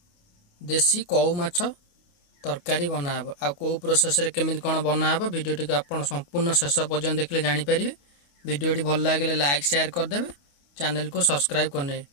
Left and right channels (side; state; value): right; late; 28 ms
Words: देसी कौ माछ तरकारी बनाब आ कौ प्रोसेस रे केमिति कोन बनाब वीडियो टी आपण संपूर्ण शेष पर्यंत देखले जानि परिबे। वीडियो टी भल लागले लाइक शेयर कर देबे, चैनल को सब्सक्राइब करने।